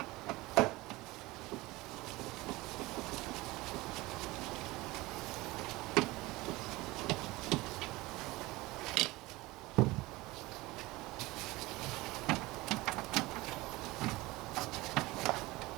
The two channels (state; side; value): quieter; left; 20.6 dB